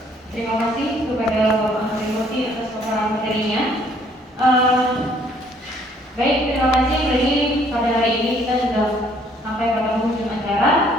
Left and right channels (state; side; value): normal; both; correlation 0.62